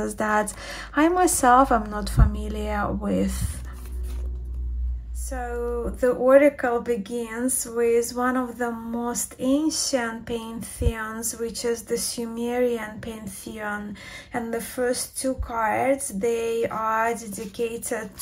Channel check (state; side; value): identical; both; correlation 1.00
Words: that I myself am not familiar with. So the oracle begins with one of the most ancient pantheons, which is the Sumerian pantheon. And the first two cards, they are dedicated